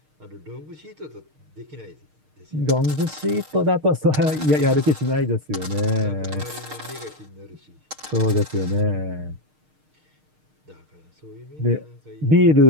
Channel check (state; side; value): late; left; 6.5 ms